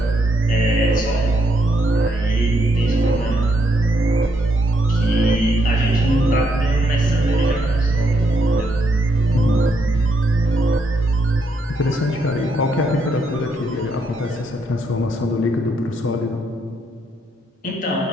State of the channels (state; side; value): normal; both; correlation 0.76